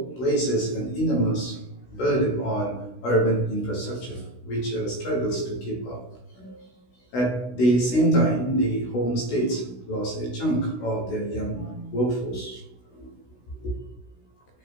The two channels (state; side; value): late; right; 16 ms